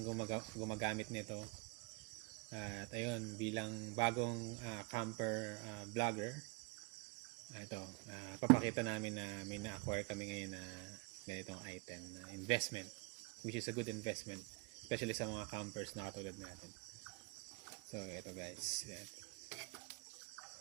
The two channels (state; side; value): quieter; left; 29.6 dB